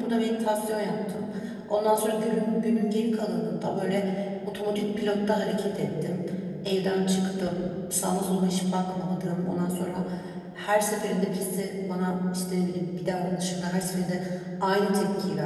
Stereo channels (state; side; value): identical; both; correlation 1.00